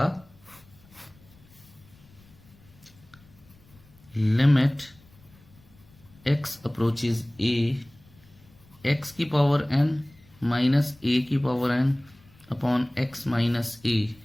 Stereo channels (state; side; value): noise; left; rumble, 27 dB below the sound